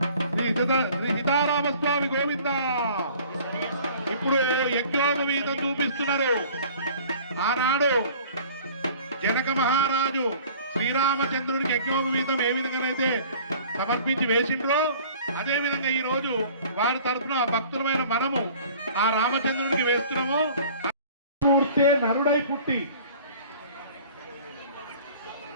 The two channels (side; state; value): both; inverted; correlation -0.48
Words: శ్రీ సీతారామస్వామి గోవింద. ఇప్పుడు యజ్ఞోపవీతం చూపిస్తున్నారు. ఆనాడు జనక మహారాజు శ్రీరామచంద్రుడికి యజ్ఞోపవీతం ఏ విధంగానైతే సమర్పించి వేసిండ్రో అదే విధంగా ఈ రోజు వారి తరఫున భక్తులమైన మనము ఆ రామచంద్రుడికి వేస్తున్నాము. పూర్తే నరుడై పుట్టి